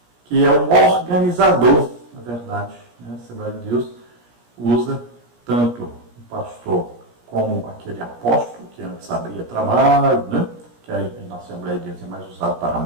que é um organizador, na verdade, né? A Assembleia de Deus usa tanto o pastor como aquele apóstolo, que antes abria trabalho, né? Que aí na Assembleia de Deus é mais usado para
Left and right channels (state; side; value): late; left; 17 ms